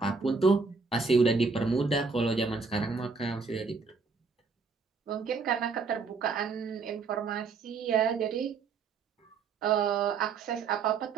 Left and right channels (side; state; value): left; quieter; 4.8 dB